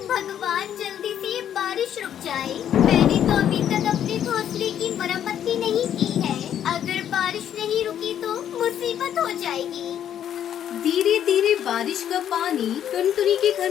भगवान, जल्दी से ये बारिश रुक जाए। मैंने तो अभी तक अपने घोंसले की मरम्मत भी नहीं की है। अगर बारिश नहीं रुकी तो मुसीबत हो जाएगी। धीरे धीरे बारिश का पानी टुनटुनी के घर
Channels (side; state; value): right; quieter; 10.0 dB